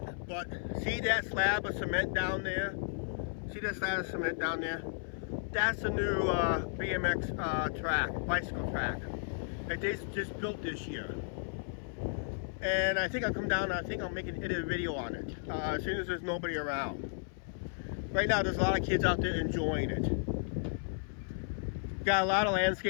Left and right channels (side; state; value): right; silent; 55 dB below the other